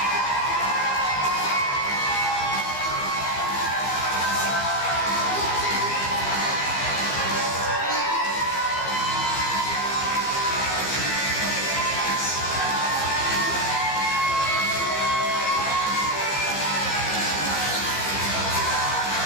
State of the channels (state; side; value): late; right; 15 ms